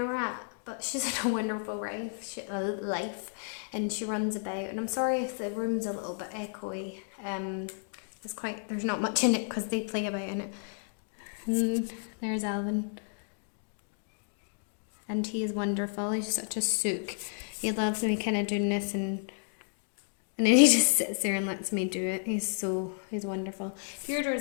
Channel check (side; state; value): right; silent; digital silence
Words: rat, but she's in a wonderful life, and she runs about. And I'm sorry if the room's a little bit echoey. There's not much in it because they play about in it. And there's Alvin, and he is wonderful. He's such a sook. He loves me kind of doing this, and then he just sits there and lets me do it. He's wonderful.